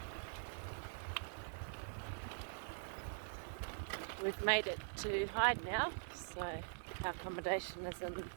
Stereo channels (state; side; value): silent; left; digital silence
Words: We've made it to Hyde now, so our accommodation is in the